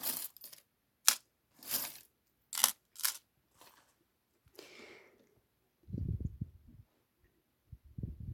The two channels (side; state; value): both; identical; correlation 1.00